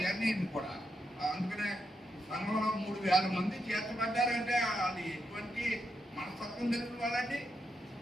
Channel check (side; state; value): both; normal; correlation 0.83